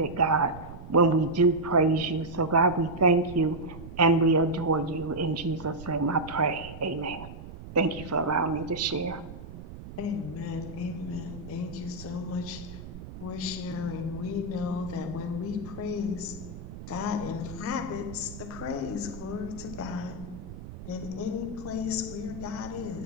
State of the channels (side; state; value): right; noise; rumble, 12 dB below the sound